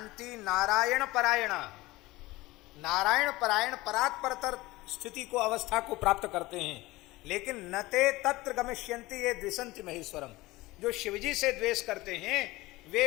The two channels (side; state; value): right; quieter; 19.9 dB